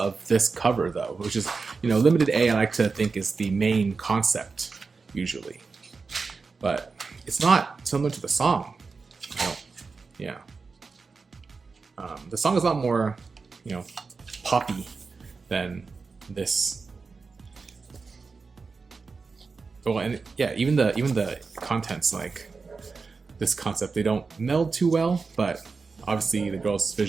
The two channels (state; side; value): quieter; left; 4.5 dB